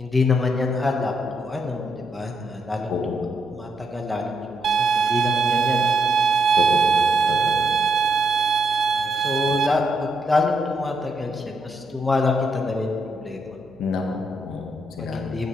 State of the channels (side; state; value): right; noise; hum, 26 dB below the sound